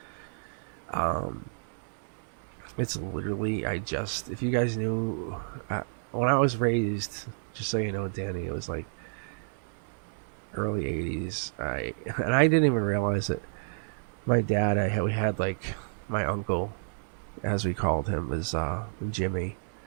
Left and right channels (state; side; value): silent; left; digital silence